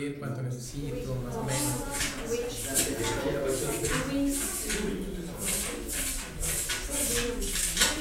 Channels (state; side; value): identical; both; correlation 1.00